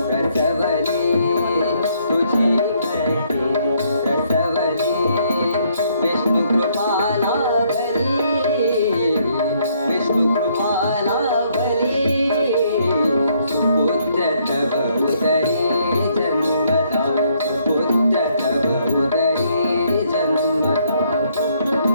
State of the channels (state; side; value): inverted; both; correlation -0.69